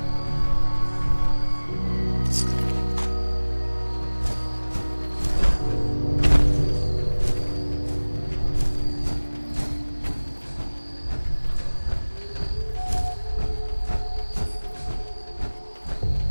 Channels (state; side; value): inverted; both; correlation -1.00